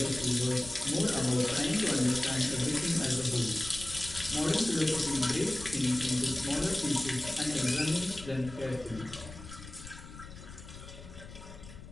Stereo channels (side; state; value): left; noise; rumble, 15 dB below the sound